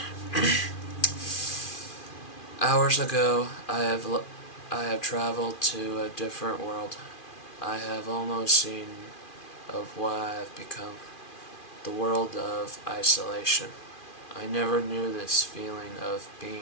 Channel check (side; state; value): right; late; 2.4 ms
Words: Hours ago, I have traveled to a different world. I have almost seen of what I have become. The world of isolation. I never knew this feeling of